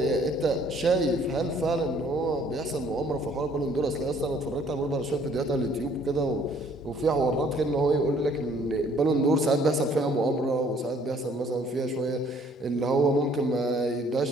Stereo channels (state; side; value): normal; both; correlation 0.60